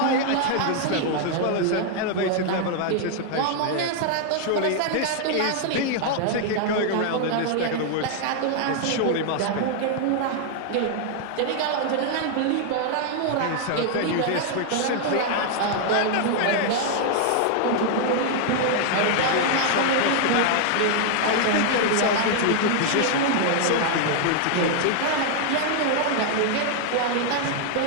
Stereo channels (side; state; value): both; different; correlation 0.00